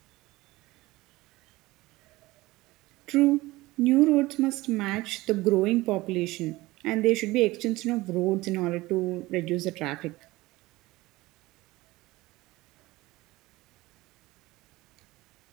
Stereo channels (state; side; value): quieter; left; 19.7 dB